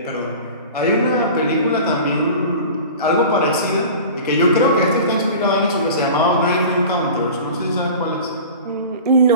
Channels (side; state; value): both; inverted; correlation -0.37